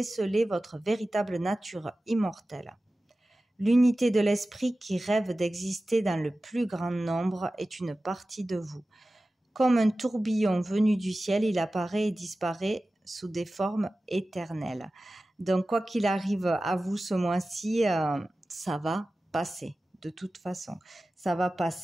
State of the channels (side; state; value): both; normal; correlation 0.96